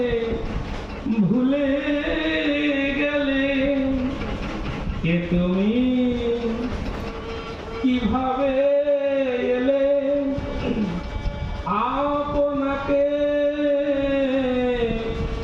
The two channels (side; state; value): both; identical; correlation 1.00